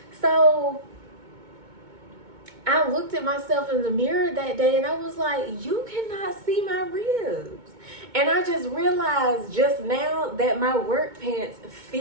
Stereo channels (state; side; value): late; left; 2.2 ms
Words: So I looked at myself in the mirror that day and I was like, you cannot see my ribs. And I just realized just now that my work pants